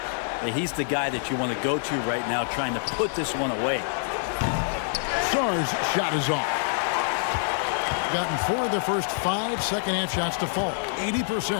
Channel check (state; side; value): silent; right; digital silence